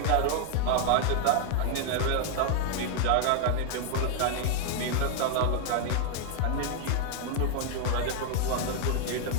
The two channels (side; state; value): both; different; correlation 0.00